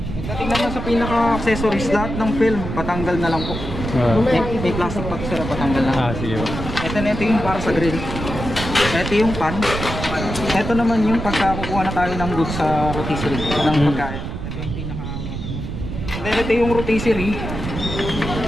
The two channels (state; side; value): noise; right; rumble, 6 dB below the sound